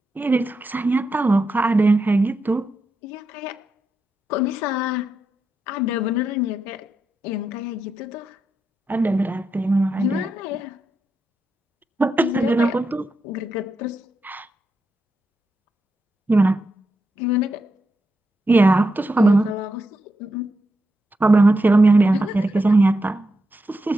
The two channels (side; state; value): both; normal; correlation 0.86